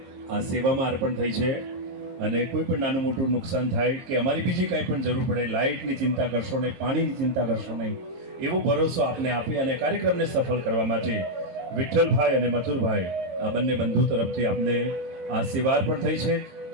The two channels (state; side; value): late; left; 22 ms